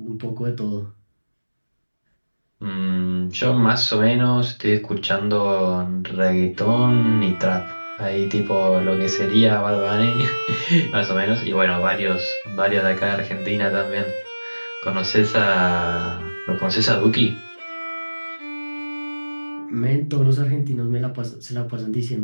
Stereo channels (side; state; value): both; inverted; correlation -1.00